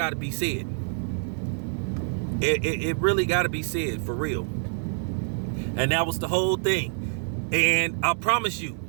to be said. It really got to be said for real. And that was the whole thing. And I promise you,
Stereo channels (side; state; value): left; silent; 60 dB below the other